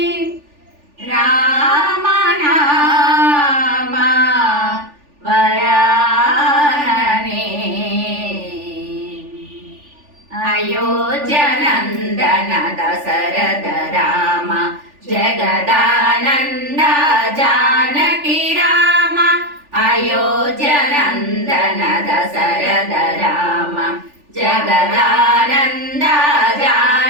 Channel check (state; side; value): late; left; 3.4 ms